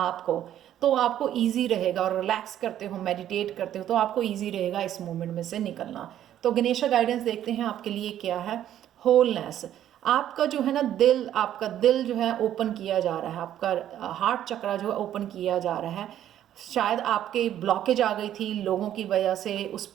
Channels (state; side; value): quieter; left; 11.4 dB